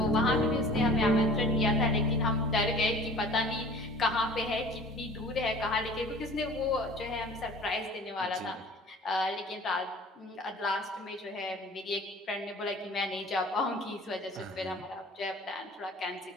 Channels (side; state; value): both; normal; correlation 0.45